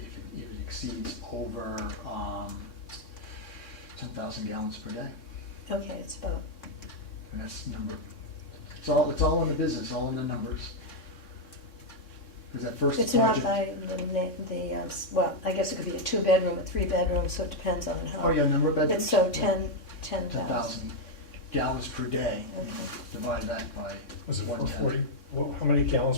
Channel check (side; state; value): right; late; 3.6 ms